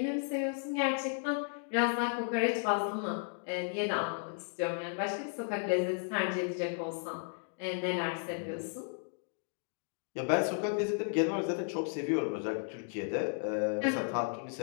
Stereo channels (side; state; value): right; silent; 55 dB below the other